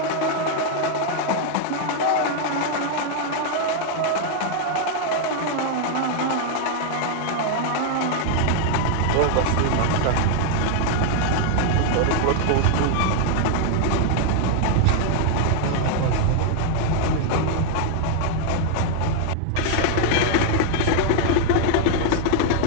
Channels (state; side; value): different; both; correlation 0.00